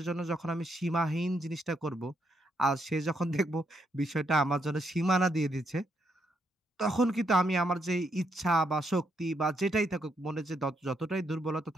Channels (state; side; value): normal; both; correlation 0.77